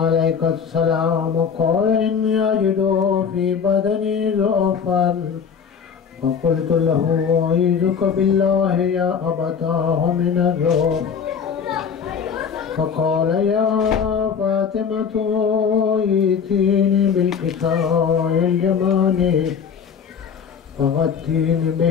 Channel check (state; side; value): quieter; right; 6.8 dB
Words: السلام. قال إني أجد في بدني ضعفا فقلت له أعيذك بالله يا أبتاه من الرعب. فقال يا فاطمة ائتيني بالكساء اليماني فغطيني